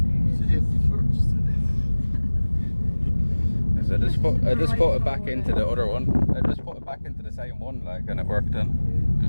Safety first. So I just put it back into the other one. I just put it back into the same one, like, and it worked then.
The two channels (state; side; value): inverted; both; correlation -1.00